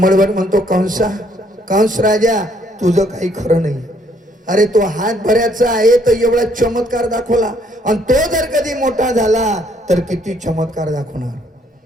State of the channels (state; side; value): normal; both; correlation 0.66